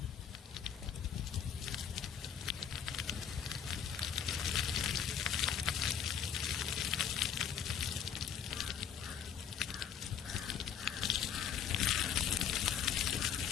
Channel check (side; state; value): right; quieter; 8.3 dB